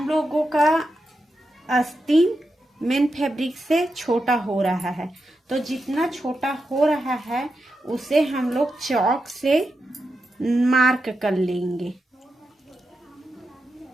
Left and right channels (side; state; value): both; normal; correlation 0.87